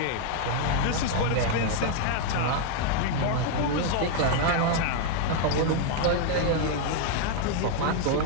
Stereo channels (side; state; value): both; different; correlation 0.00